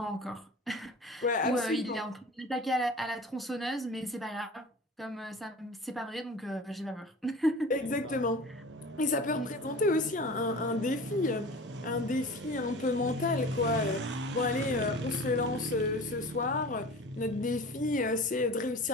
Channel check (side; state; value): both; normal; correlation 0.38